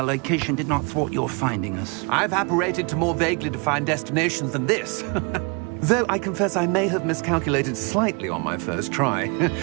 location did not thwart your finding us. I've apparated to more vaguely defined destinations than this. Though I confess I may have miscalculated slightly on my first try.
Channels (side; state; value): left; quieter; 32.2 dB